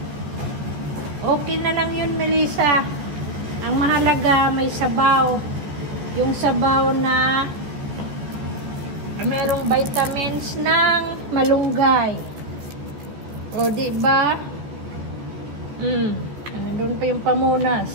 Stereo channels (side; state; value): left; late; 14 ms